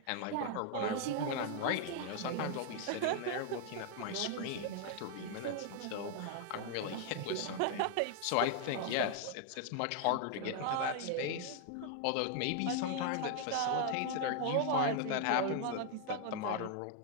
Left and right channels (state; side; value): different; both; correlation 0.00